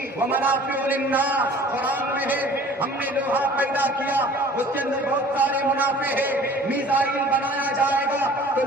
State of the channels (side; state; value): both; normal; correlation 0.48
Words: وَمَنَافِعُ لِلنَّاسِ، قرآن میں ہے ہم نے لوہا پیدا کیا، اس کے اندر بہت سارے منافع ہے۔ میزائل بنایا جائے گا تو